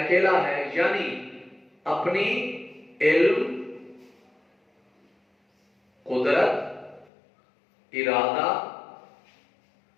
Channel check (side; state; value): right; drops out; at 7.1 s